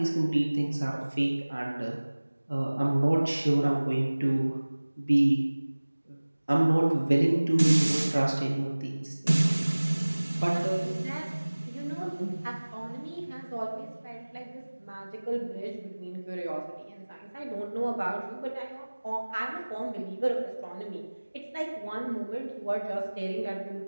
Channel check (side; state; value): both; inverted; correlation -1.00